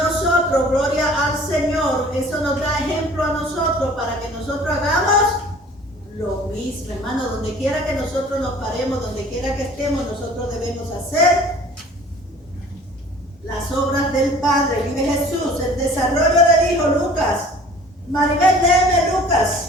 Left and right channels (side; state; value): both; normal; correlation 0.48